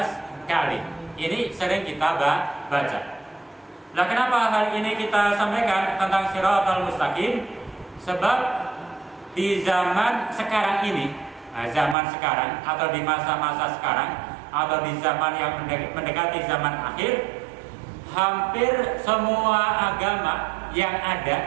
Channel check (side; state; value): left; drops out; at 12.0 s